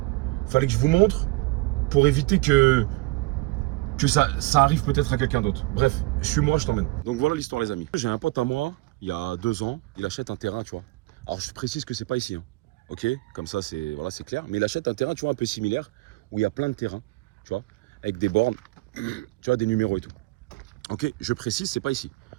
montre. Pour éviter que ça arrive peut-être à quelqu'un d'autre. Bref, suis-moi, je t'emmène. Donc voilà l'histoire, les amis. J'ai un pote à moi, il y a 2 ans, il achète un terrain, tu vois. Alors, je précise que c'est pas ici, hein. Ok, comme ça, c'est clair. Mais il achète un terrain, tu vois, un peu similaire, où il y a plein de terrains, tu vois, avec des bornes, tu vois, des numéros et tout. Ok, je précise, c'est pas ici.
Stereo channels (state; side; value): quieter; left; 21.6 dB